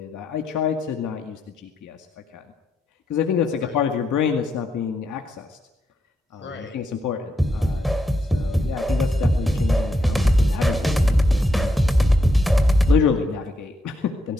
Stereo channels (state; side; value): normal; both; correlation 0.81